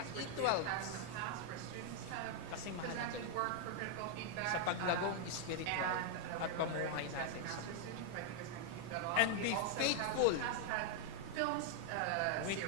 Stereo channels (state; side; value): different; both; correlation 0.00